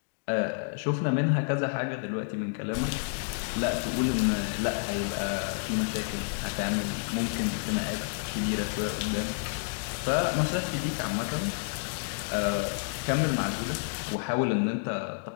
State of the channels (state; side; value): silent; right; digital silence